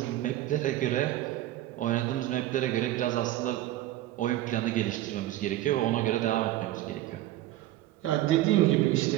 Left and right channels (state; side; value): quieter; left; 14.8 dB